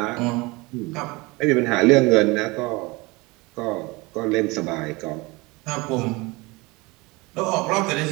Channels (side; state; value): left; quieter; 24.3 dB